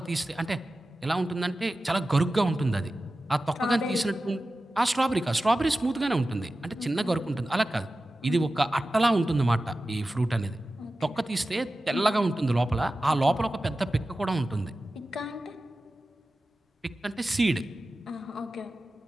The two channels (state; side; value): normal; both; correlation 0.94